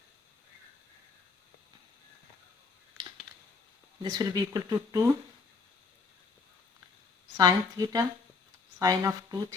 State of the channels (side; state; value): right; quieter; 4.4 dB